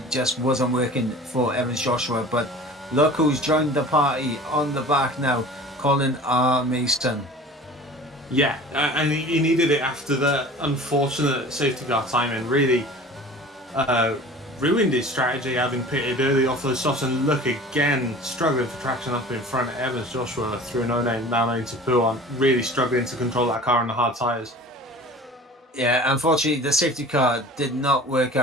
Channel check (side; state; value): both; normal; correlation 0.42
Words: just wasn't working for Evans Joshua. But look who's joined the party on the back now, Colin R. Mason. Yeah, and he needed it after the unfortunate safety car timing. Really ruined his strategy, having pitted early off those softs, and look again, struggling for traction up in front. Evans Joshua through an 09 down into Pouan, really struggling to control that car on the hard tyres. Yeah, unfortunately, the safety car did not work